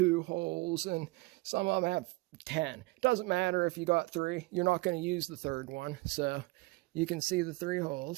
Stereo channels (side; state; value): left; quieter; 23.1 dB